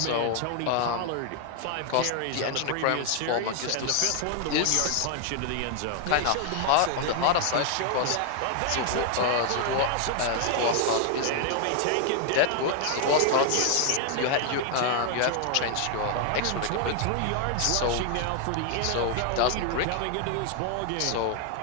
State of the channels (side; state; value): both; different; correlation 0.00